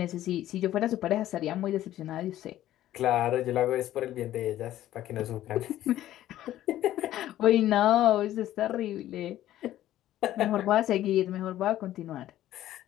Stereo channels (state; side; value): quieter; right; 13.4 dB